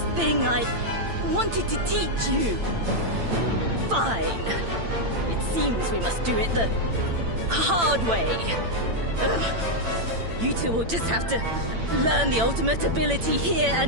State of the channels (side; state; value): left; late; 8.9 ms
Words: thing I wanted to teach you. Fine. It seems we must do it the hard way. You two will just have to learn the ultimate ability here